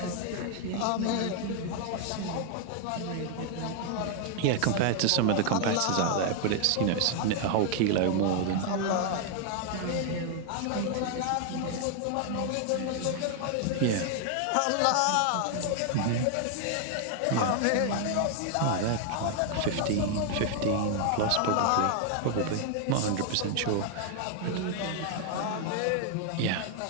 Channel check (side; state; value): both; different; correlation 0.00